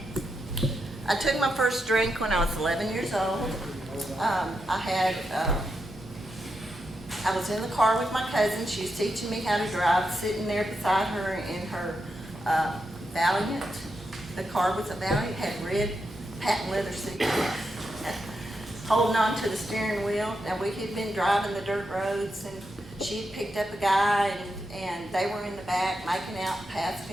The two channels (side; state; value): both; normal; correlation 0.85